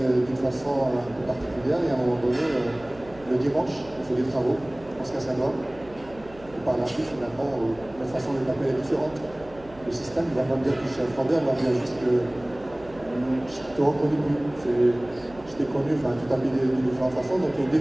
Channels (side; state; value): right; noise; hum, 22 dB below the sound